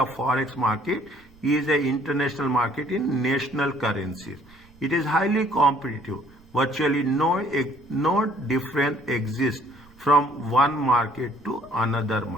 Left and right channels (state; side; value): noise; right; rumble, 27 dB below the sound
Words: forex market is a international market in national currencies. It is highly competitive. Virtually no difference exists from one market to another